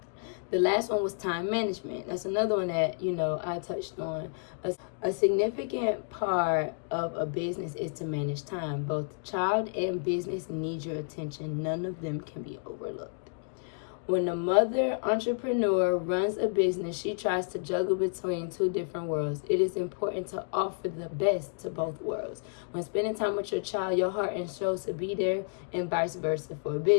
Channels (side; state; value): right; silent; digital silence